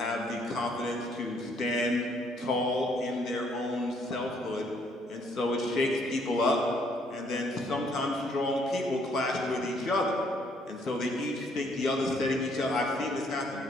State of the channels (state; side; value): normal; both; correlation 0.67